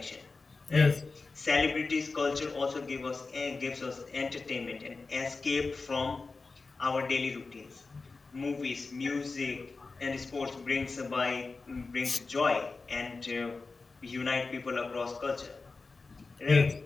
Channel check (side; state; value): right; quieter; 4.0 dB